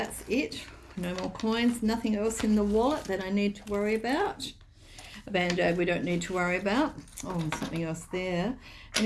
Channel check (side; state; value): both; identical; correlation 1.00